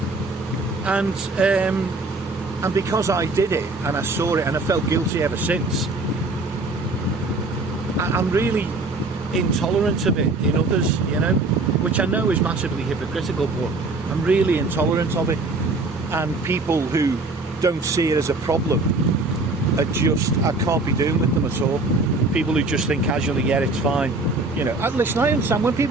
And because I did it and I saw it and I felt guilty ever since, I'm really intolerant of it in others, you know, which I know is massively hypocritical, but I'm really intolerant of it. And people who don't see it as a problem are just, I can't be doing with them at all. People who just think casually, yeah, it's fine, You know, listen, I understand when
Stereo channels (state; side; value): quieter; left; 3.2 dB